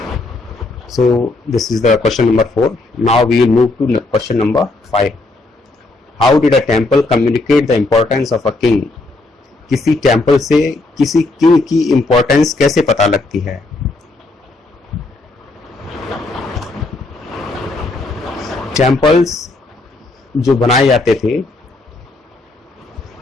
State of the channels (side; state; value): right; quieter; 3.1 dB